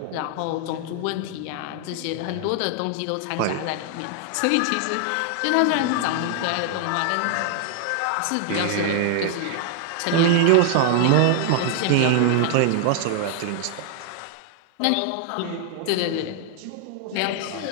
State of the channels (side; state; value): both; different; correlation 0.00